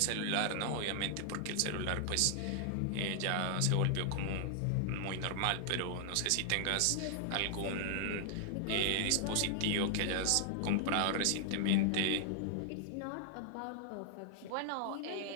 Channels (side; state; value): both; different; correlation 0.00